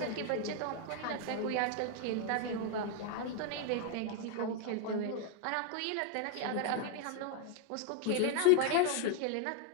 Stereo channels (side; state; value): both; different; correlation 0.01